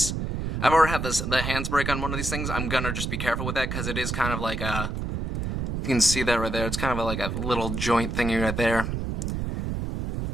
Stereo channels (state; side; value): noise; right; rumble, 3 dB below the sound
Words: I've already had the hands break on one of these things, I'm gonna just be careful with that because it is kind of like a. You can see that right there. It's kind of like a little joint thingy right there